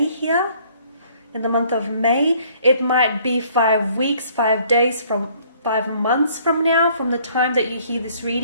here, in the month of May. It might be 5 weeks, 5 days, from 5 months from now, from the time that you hear this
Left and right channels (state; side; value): inverted; both; correlation -0.60